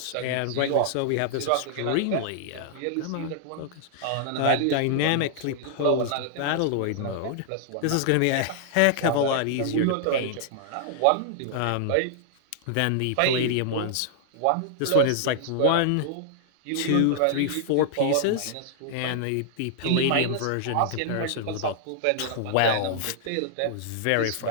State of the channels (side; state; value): both; different; correlation -0.01